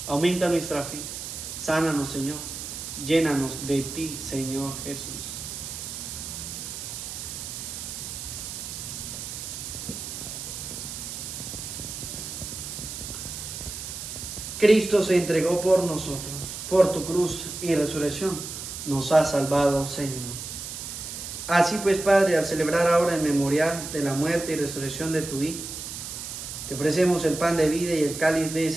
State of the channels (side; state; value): right; noise; hiss, 8 dB below the sound